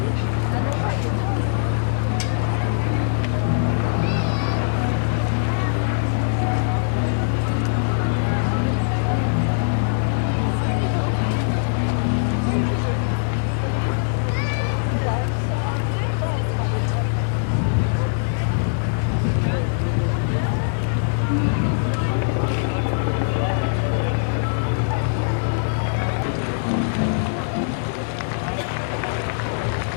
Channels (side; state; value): right; silent; digital silence